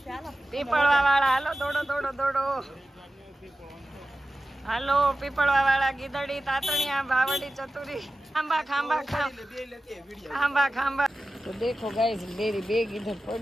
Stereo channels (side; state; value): both; normal; correlation 0.94